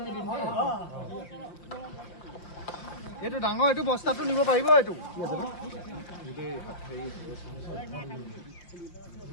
এইটো ডাঙৰ এইটো বস্তাটো নিব পাৰিব এইটো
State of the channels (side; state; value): right; late; 5.7 ms